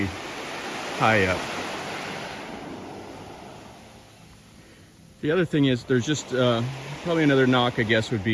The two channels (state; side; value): identical; both; correlation 1.00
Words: high up. The other thing is there's just probably another knock, I guess, would